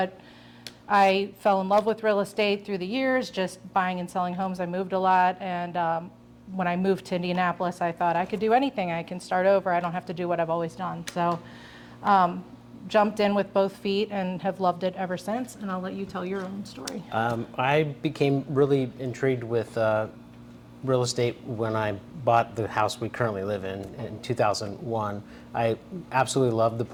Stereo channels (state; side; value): identical; both; correlation 1.00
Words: I fell in love with real estate through the years, just buying and selling homes. I moved a lot, and when I moved to Indianapolis, I thought I could do anything. I can start over. I don't have to do what I've always done. So jumped in with both feet and have loved it ever since, and I'll let you tell your own story. I became really intrigued with real estate when I bought the house we currently live in 2001. I absolutely loved the